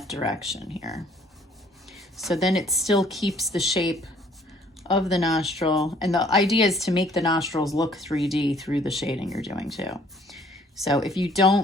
direction here. So then it still keeps the shape of the nostril, and the idea is to make the nostrils look 3D through the shading you're doing too. So if you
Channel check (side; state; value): both; normal; correlation 0.59